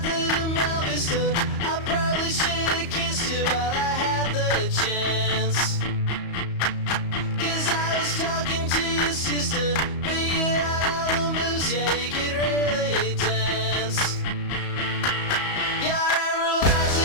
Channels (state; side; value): late; right; 34 ms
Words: in Mel Vista, I probably should've kissed you while I had the chance. Cause I was talking to your sister, but you had all the moves, yeah, you could really dance. Yeah, I realized